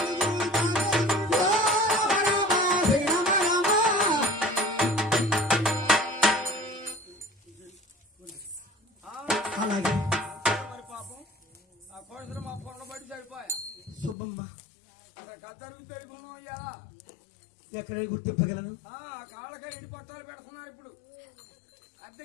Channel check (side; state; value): right; drops out; at 14.2 s